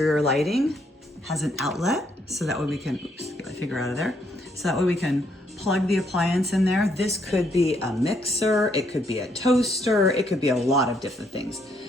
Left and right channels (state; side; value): normal; both; correlation 0.72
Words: lighting, has an outlet, so that way we can, oops, get my finger out of there. So that way we can plug the appliance in there. This could be a mixer, it could be a toaster, it could be a lot of different things.